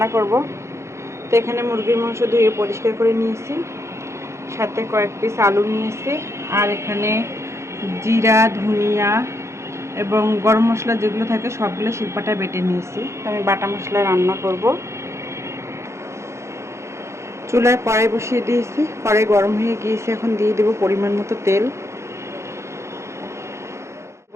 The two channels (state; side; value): late; left; 0.14 ms